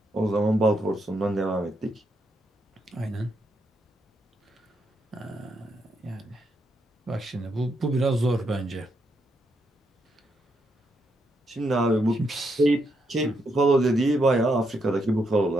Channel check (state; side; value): normal; both; correlation 0.79